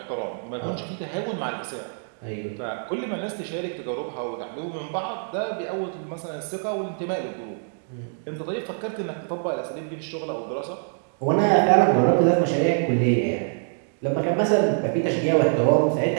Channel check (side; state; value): left; silent; digital silence